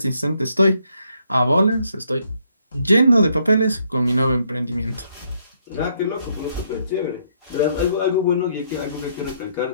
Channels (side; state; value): both; inverted; correlation -0.72